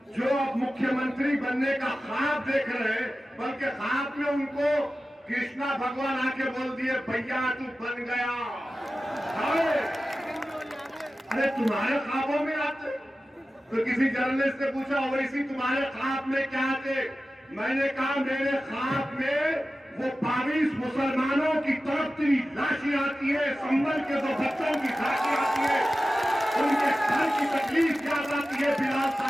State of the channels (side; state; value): both; normal; correlation 0.94